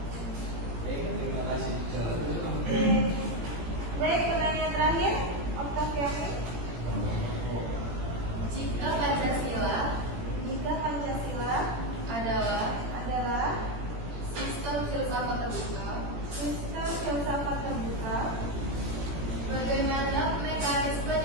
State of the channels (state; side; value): late; left; 17 ms